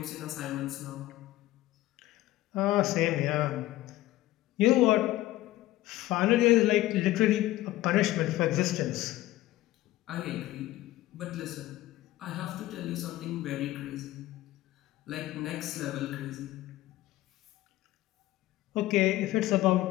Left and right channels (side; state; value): right; quieter; 16.2 dB